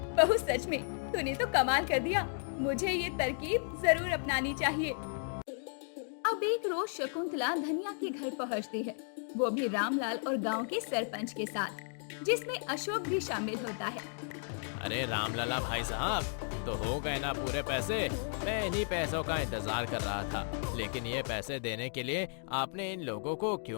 बहू सच में तूने तो कमाल कर दिया, मुझे ये तरकीब जरूर अपनानी चाहिए। अब एक रोज शकुंतला धनिया के घर पहुंचती है, वो भी रामलाल और गांव के सरपंच के साथ, जिसमें अशोक भी शामिल होता है। अरे रामलला भाई साहब, तो हो गए ना पूरे पैसे? मैं इन्हीं पैसों का इंतजार कर रहा था, लेकिन ये पैसे देने के लिए आपने इन लोगों को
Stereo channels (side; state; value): right; silent; 55 dB below the other